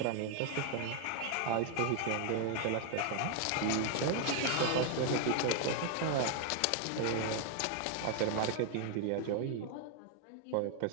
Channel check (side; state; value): both; different; correlation 0.00